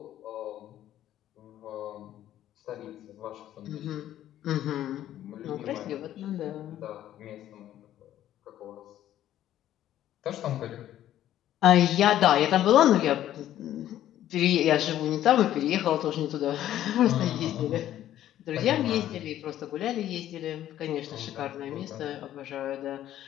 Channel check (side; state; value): right; quieter; 12.3 dB